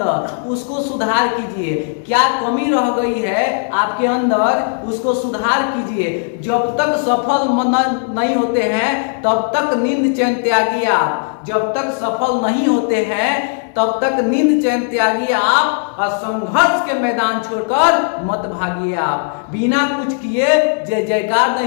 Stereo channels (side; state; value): right; silent; 68 dB below the other